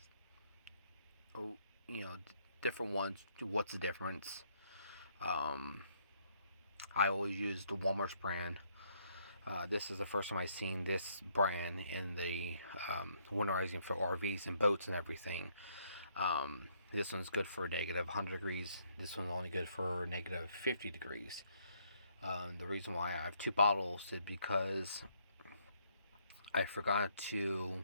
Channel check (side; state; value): both; inverted; correlation -0.70